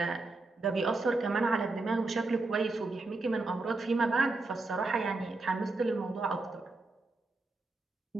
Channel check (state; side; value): quieter; left; 3.3 dB